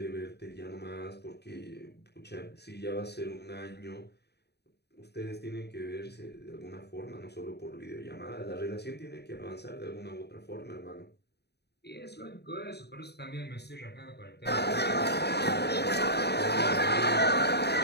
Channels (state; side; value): late; right; 0.48 ms